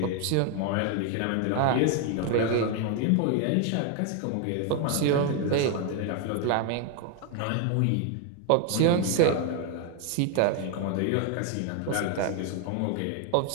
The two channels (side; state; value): both; different; correlation 0.01